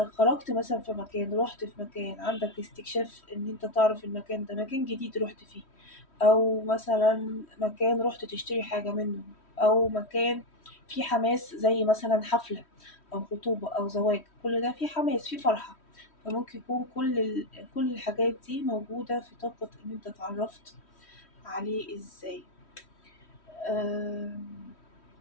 مثلا في مكان، رحت في مكان، عندك استكشاف ان انت تعرف المكان ده مكان جديد رحت فيه، او مثلا مكان رحت تشتري حاجه منه، او مكان فيه حماس زي مثلا حفله او خطوبه او زواج، كل ده فيه حماس، فيه فرحه. فممكن يكون كل الحاجات دي موجودة في طاقة إن أنت اتعرفت عليه إزاي. آم،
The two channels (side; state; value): right; late; 3.1 ms